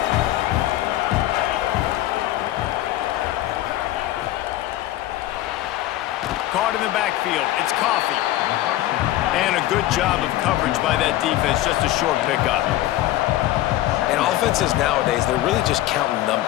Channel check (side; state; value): right; quieter; 14.9 dB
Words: Caught in the backfield. It's Coffee. And a good job of coverage by that defense. Just a short pickup. And offenses nowadays, they're really just counting